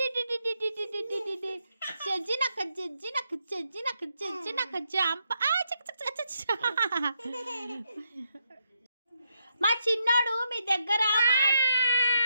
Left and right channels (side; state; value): both; inverted; correlation -0.79